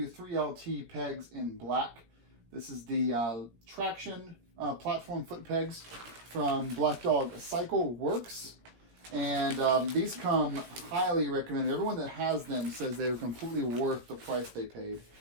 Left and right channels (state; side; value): late; left; 17 ms